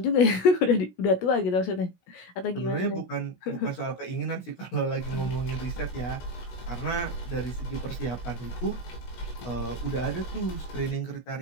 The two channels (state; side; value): late; right; 16 ms